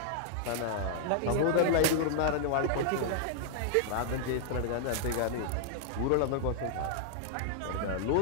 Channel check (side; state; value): both; different; correlation -0.01